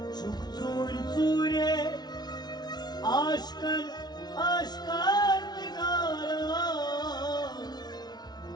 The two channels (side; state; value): right; late; 0.19 ms